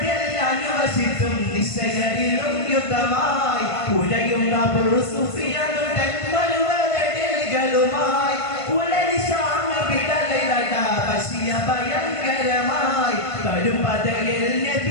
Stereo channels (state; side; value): late; right; 1.5 ms